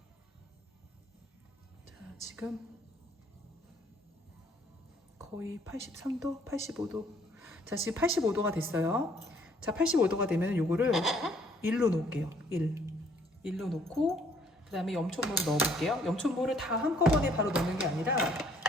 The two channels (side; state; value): both; normal; correlation 0.62